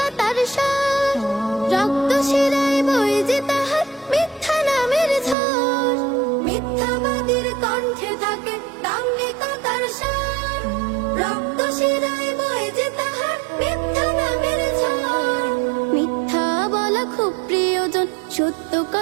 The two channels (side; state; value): left; drops out; at 5.4 s